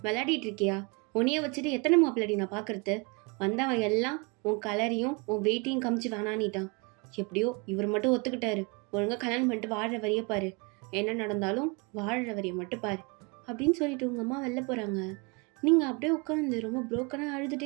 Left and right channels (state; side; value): quieter; left; 30.1 dB